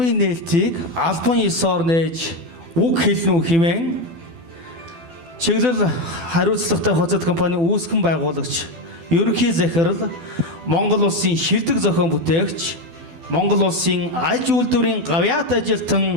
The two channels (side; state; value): left; late; 12 ms